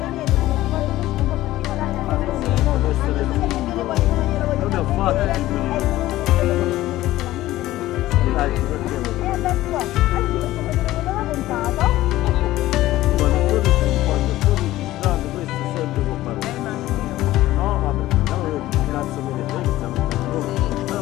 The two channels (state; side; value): quieter; right; 15.8 dB